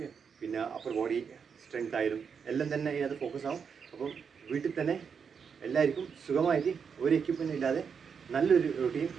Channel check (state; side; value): quieter; left; 6.4 dB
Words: പിന്നെ അപ്പർ ബോഡി സ്ട്രെങ്ത് ആയാലും എല്ലാം തന്നെ ഇതിനകത്ത് ഫോക്കസ് ആവും. അപ്പം വീട്ടിൽ തന്നെ എല്ലാവർക്കും സുഖമായിട്ട് ഒരു എക്യുപ്മെൻറ്റ് ഇല്ലാതെ നല്ലൊരു റൂട്ടീൻ